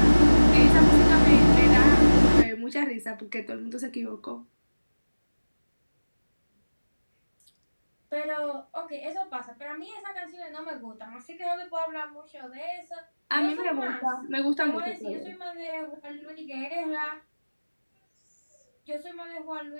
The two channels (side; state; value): both; inverted; correlation -1.00